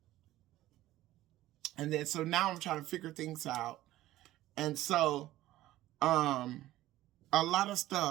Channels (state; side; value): quieter; left; 15.4 dB